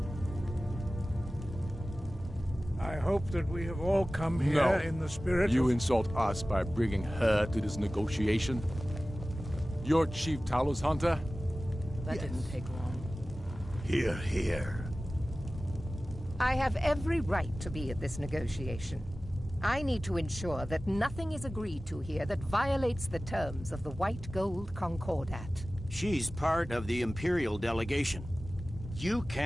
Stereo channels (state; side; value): normal; both; correlation 0.97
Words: I hope that we have all come here in the spirit You of... insult us by bringing her to this negotiation? You're Chief Talos Hunter? That didn't take long. Hear, hear. I have every right to be at this negotiation. I need to ensure that nothing is agreed to here that violates the terms of the White Gold Concordat. She's part of the Imperial delegation. You